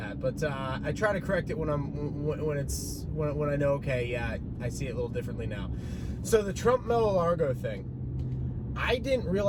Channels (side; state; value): both; identical; correlation 1.00